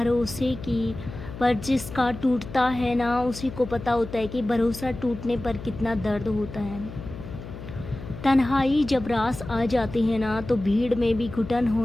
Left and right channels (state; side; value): noise; left; hum, 12 dB below the sound